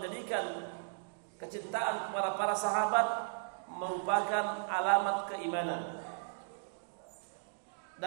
menjadikan kecintaan kepada para sahabat merupakan alamat keimanan,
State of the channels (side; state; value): left; silent; digital silence